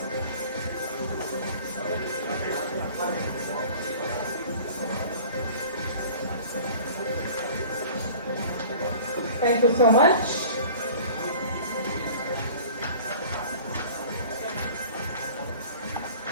Thank you so much.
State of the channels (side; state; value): both; inverted; correlation -0.44